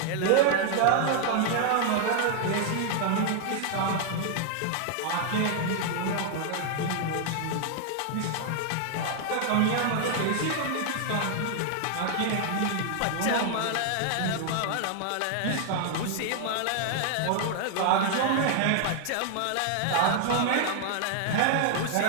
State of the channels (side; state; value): both; different; correlation 0.00